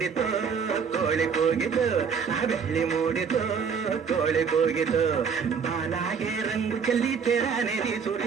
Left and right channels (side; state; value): left; quieter; 6.2 dB